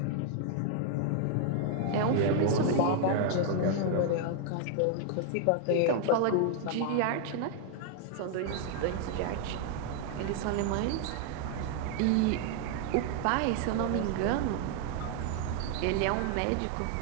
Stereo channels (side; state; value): both; different; correlation 0.00